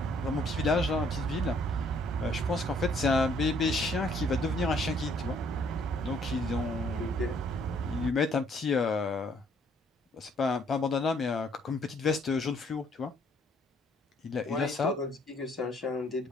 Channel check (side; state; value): both; normal; correlation 0.64